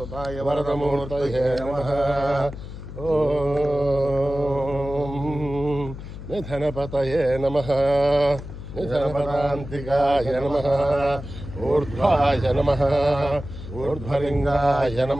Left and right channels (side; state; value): left; noise; hum, 11 dB below the sound